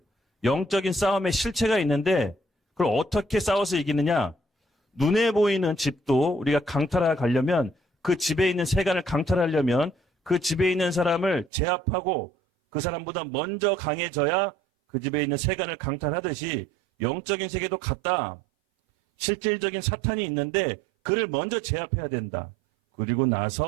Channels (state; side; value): drops out; left; at 11.5 s